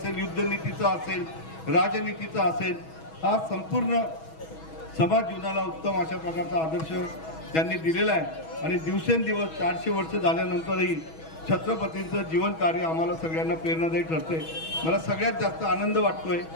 युद्धनीतीचं असेल, राजनीतीचं असेल, हा संपूर्ण समाज जीवनाला उत्तम अशा प्रकारचा आदर्श त्यांनी दिलेला आहे. आणि दिवसेंदिवस 400 वर्ष झाल्यानंतरही छत्रपतींचं जीवन कार्य आम्हाला सगळ्यांना प्रेरणादायी ठरते. मला सगळ्यात जास्त आनंद वाटतोय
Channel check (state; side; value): late; right; 6.2 ms